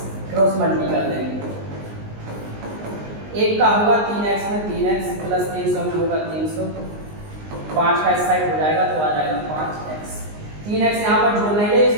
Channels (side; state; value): left; late; 19 ms